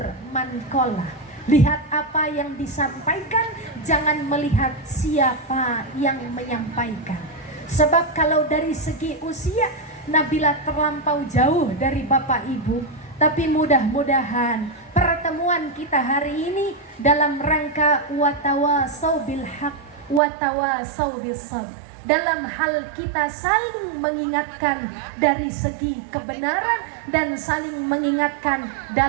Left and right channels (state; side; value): drops out; left; at 20.2 s